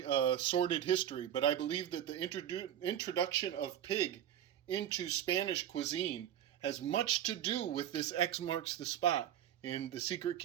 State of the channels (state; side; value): quieter; left; 10.7 dB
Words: a sordid history, but I believe that the introduction of pig into Spanish cuisine has much to do with this X marks the spot in the secret